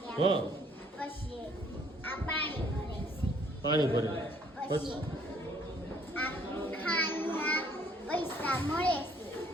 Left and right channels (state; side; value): normal; both; correlation 0.62